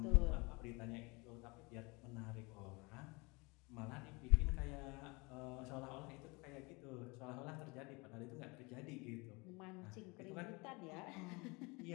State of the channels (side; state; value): right; quieter; 27.0 dB